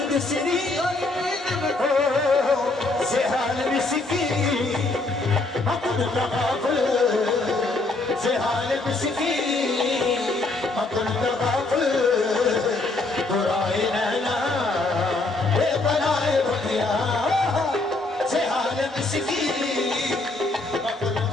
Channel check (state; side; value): quieter; right; 3.2 dB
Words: श्री से हाल मिसकी अकुल तगाफल से हाल मिसकी अकुल तगाफल बुराए नैना ये बनाए बतिया से हाल मिसकी अकुल